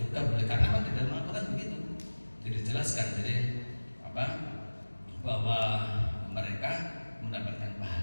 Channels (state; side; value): inverted; both; correlation -1.00